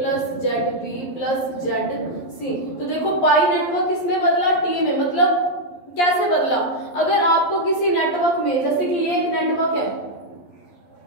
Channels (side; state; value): right; late; 11 ms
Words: ZB plus ZC। तो देखो पाई नेटवर्क किसमें बदला, टी में। मतलब कैसे बदला, अगर आपको किसी नेटवर्क में, जैसे कि ये एक नेटवर्क है,